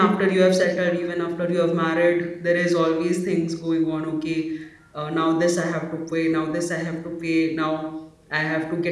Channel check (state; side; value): identical; both; correlation 1.00